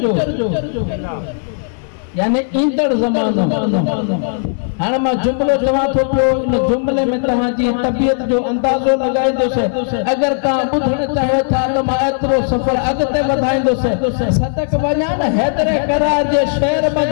जो, यानी ईंदड़ ज़मानो। हाणे मां जुमिलो चवां थो पियो, इन जुमिले में तव्हांजी तबियत जो अंदाज़ो लॻाईंदुसि। अगरि तव्हां ॿुधणु चाहियो था त मां एतिरो सफ़र अॻिते वधाईंदुसि। सदक वञा न हैदरे करार जे शहर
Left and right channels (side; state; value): right; silent; digital silence